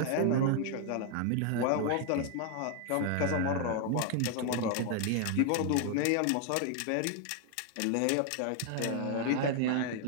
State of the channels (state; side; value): different; both; correlation 0.00